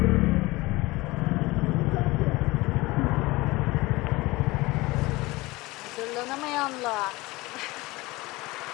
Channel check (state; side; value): quieter; right; 21.3 dB